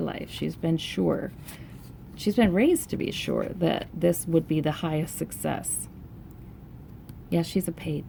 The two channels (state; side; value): identical; both; correlation 1.00